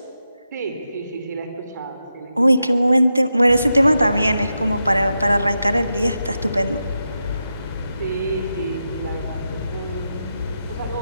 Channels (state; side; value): inverted; both; correlation -0.88